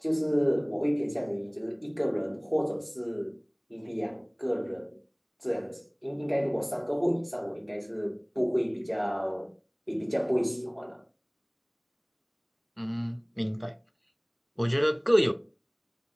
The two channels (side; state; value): both; identical; correlation 1.00